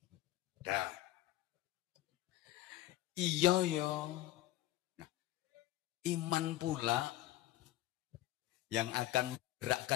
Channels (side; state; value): right; quieter; 15.1 dB